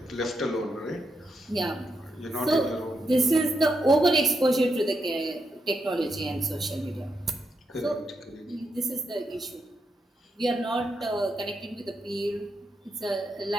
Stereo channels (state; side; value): normal; both; correlation 0.82